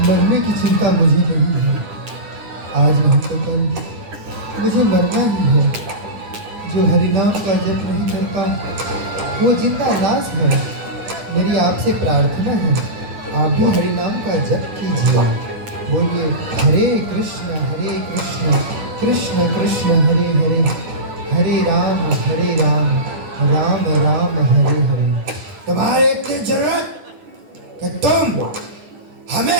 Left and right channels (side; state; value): left; late; 10 ms